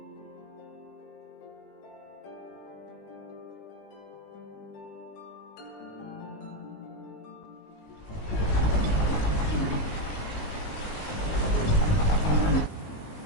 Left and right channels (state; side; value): late; right; 19 ms